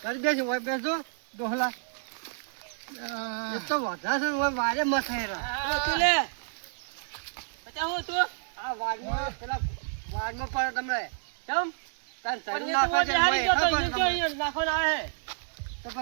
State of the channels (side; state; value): left; silent; digital silence